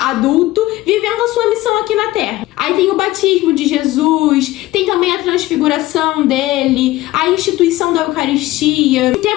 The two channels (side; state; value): right; quieter; 17.3 dB